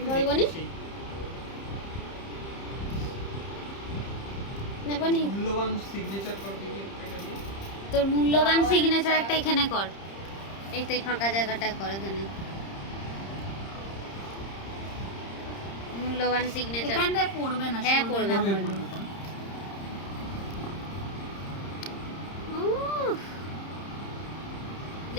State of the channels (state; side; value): late; right; 30 ms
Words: বলবো নি? নেবো নি মূল্যবান সিগনেচার করবি কি একটা দিয়ে? তোর মূল্যবান সিগনেচার একটা এখানে কর, এই তো এই ফাঁকা জায়গাটা কর এখানে মূল্যবান সিগনেচার। এখানটায় পড়বে না, হ্যাঁ, সরবে পড়বে, না। পড়বে। উফ,